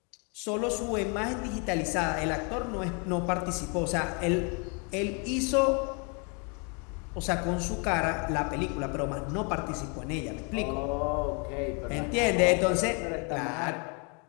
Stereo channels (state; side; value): quieter; right; 35.3 dB